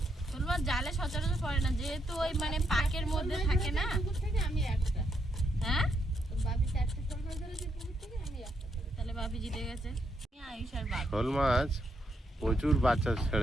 শোল মাছ জালে সচরাচর পড়ে না, যেহেতু ওই মানে পাকের মধ্যে থাকে না। আমি একটা, হ্যাঁ, বাপি 4টে শোল মাছ ধরেছে পুকুর থেকে, আমি একটা ধরেছি। তাহলে বাপি জিতে গেছে। আয়ুষ আর বাপি। শোল মাছ প্রচুর বাচ্চা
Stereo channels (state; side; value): normal; both; correlation 0.78